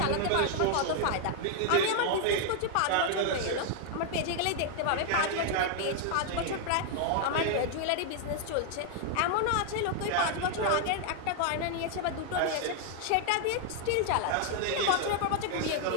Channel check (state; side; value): different; both; correlation 0.00